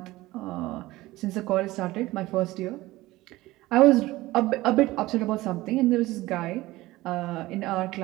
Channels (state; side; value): quieter; left; 18.3 dB